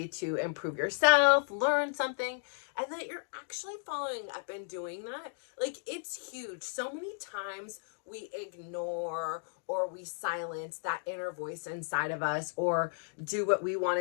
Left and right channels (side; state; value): right; silent; digital silence